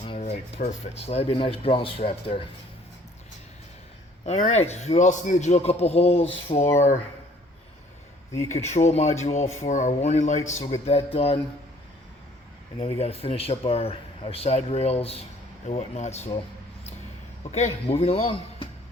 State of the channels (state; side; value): normal; both; correlation 0.57